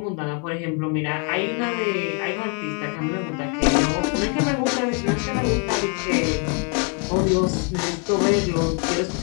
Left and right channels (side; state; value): right; quieter; 38.2 dB